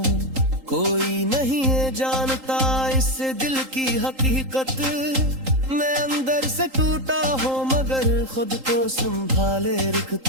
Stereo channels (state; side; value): late; left; 3.8 ms